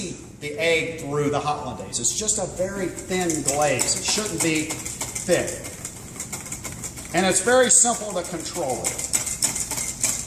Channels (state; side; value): identical; both; correlation 1.00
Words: the egg through the hollandaise. It's just a very thin glaze. It shouldn't be thick. And it's very simple to control it.